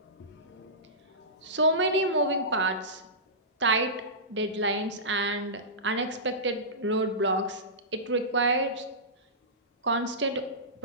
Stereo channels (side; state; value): both; normal; correlation -0.19